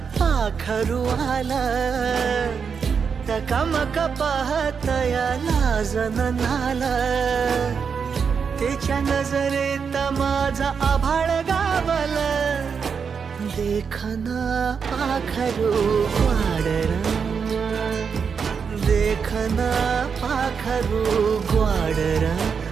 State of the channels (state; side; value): quieter; left; 6.2 dB